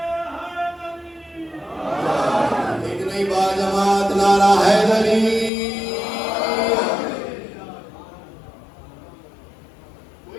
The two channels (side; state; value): right; drops out; at 5.5 s